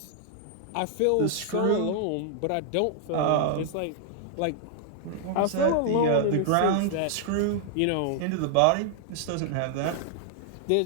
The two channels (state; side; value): different; both; correlation 0.00